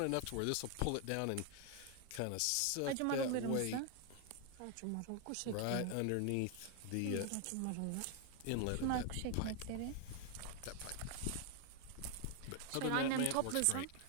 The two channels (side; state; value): both; different; correlation 0.00